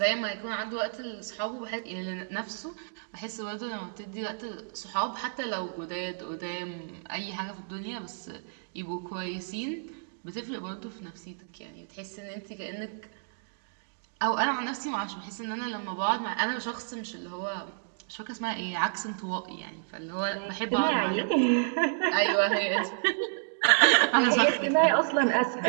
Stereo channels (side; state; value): left; silent; digital silence